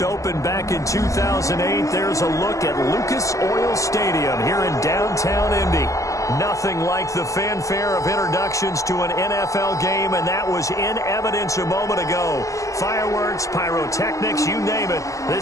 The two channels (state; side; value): late; right; 0.16 ms